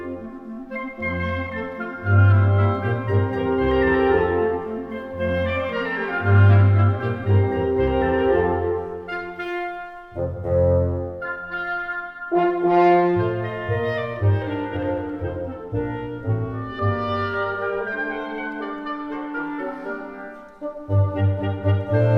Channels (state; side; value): identical; both; correlation 1.00